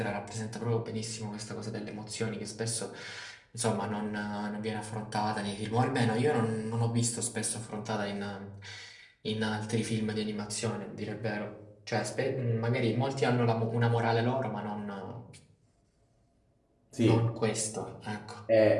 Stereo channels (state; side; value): identical; both; correlation 1.00